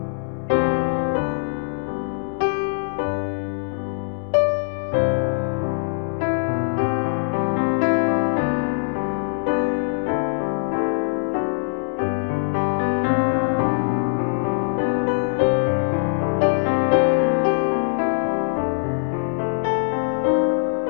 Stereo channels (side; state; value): right; silent; 64 dB below the other